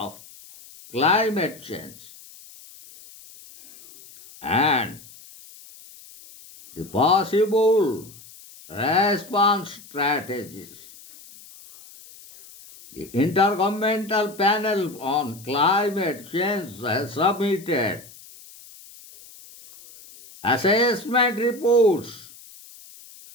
climate change and the possible response strategies. The Intergovernmental Panel on Climate Change has submitted assessment reports,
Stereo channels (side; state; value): left; noise; hiss, 21 dB below the sound